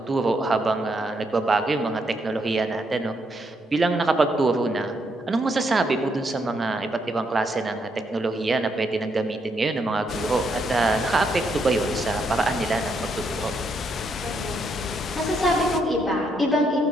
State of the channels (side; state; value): both; normal; correlation 0.76